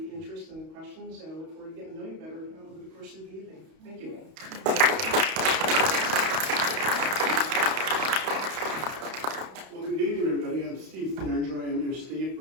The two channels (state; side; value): late; left; 31 ms